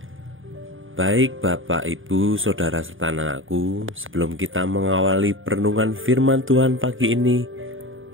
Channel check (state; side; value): late; left; 0.58 ms